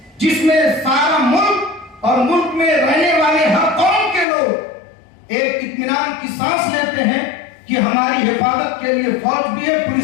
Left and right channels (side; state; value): right; drops out; at 4.2 s